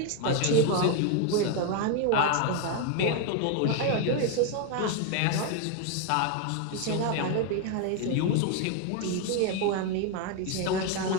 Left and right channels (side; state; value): both; different; correlation 0.01